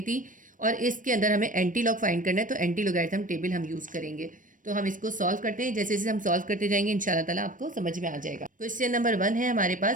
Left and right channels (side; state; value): left; late; 0.38 ms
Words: थी और इसके अंदर हमें एंटी लॉग फाइंड करना है, तो एंटी लोगैरिथम टेबल हम यूज करेंगे। तो हम इसको सॉल्व करते हैं। जैसे जैसे हम सॉल्व करते जाएंगे इंशाल्लाह ताला आपको समझ में आ जाएगा। क्वेश्चन नंबर 1 है हमारे